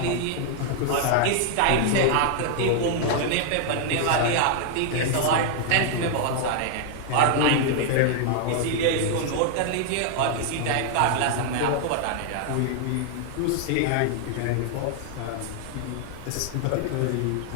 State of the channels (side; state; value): both; different; correlation 0.00